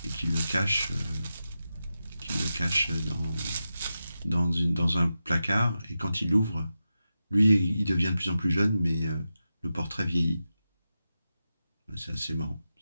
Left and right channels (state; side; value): inverted; both; correlation -0.90